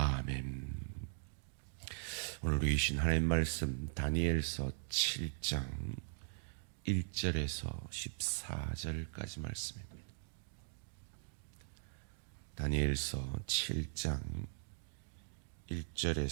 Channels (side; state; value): left; silent; digital silence